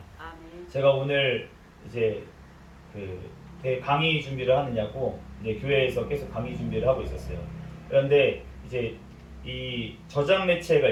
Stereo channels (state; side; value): identical; both; correlation 1.00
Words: 아멘. 제가 오늘 이제 강의 준비를 하느냐고 이제 교회에서 계속 강의 준비를 하고 있었어요. 그런데 이제 이 저장 매체가